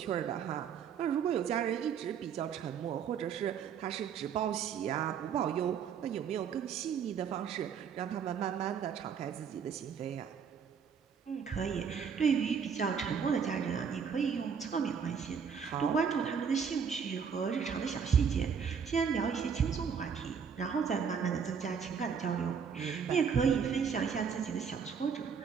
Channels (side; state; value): left; quieter; 6.8 dB